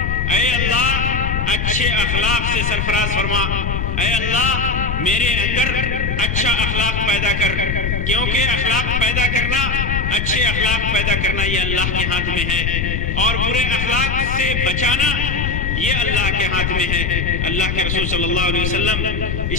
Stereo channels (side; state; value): left; noise; rumble, 1 dB below the sound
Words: اچھے اخلاق سے سرفراز فرما. اے اللہ میرے اندر اچھا اخلاق پیدا کر، کیونکہ اخلاق پیدا کرنا، اچھے اخلاق پیدا کرنا یہ اللہ کے ہاتھ میں ہے، اور برے اخلاق سے بچانا یہ اللہ کے ہاتھ میں ہے. اللہ کے رسول صلی اللہ علیہ وسلم